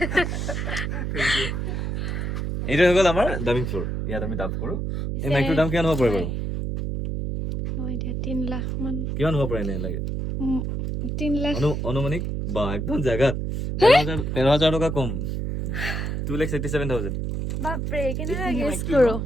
এইটো হৈ গ'ল আমাৰ ডাবিং ফ্ল'ৰ ইয়াত আমি ডাব কৰোঁ এই মাইকটোৰ দাম কিমান হ'ব পাৰে বাৰু 3 লাখ মান কিমান হ'ব পাৰে এনে লাগে 3 লাখ অনুমানিক বা একদম জেগাত 13,000 টকা কম 2,87,000 বাপৰে কেনেকুৱা গেছ কৰোঁ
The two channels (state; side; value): noise; right; hum, 2 dB below the sound